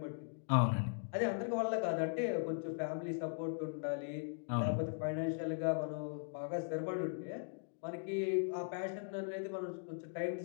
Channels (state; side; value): silent; right; digital silence